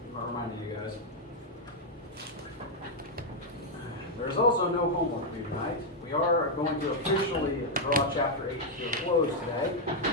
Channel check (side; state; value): both; normal; correlation -0.01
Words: guys. There's also no homework due tonight. We are going to officially draw Chapter 8 to a close today,